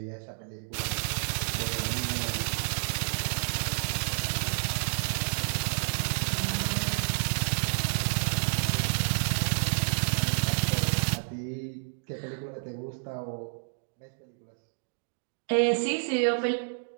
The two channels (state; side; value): silent; left; 58 dB below the other